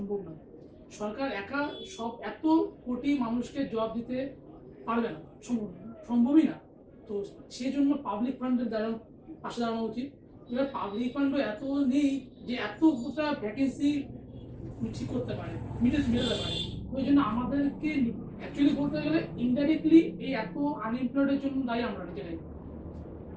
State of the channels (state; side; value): identical; both; correlation 1.00